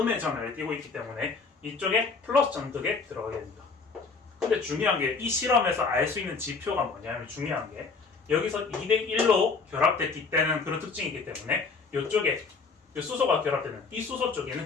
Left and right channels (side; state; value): right; quieter; 4.6 dB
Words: 전하를 띄고 있기 때문에 이쪽에 플러스 전극에 들어가게 됩니다. 근데 중요한 게 이 실험에서 알 수 있는 지표가 뭐냐면 중요한 게 여기서 2대1로 결합됐기 때는 그런 특징이 있기 때문에 이쪽에 수소가 결합되는 이 수소